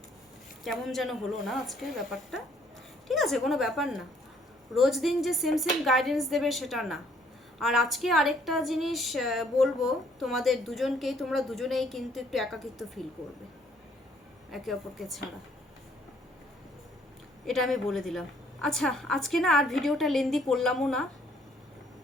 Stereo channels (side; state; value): both; normal; correlation 0.63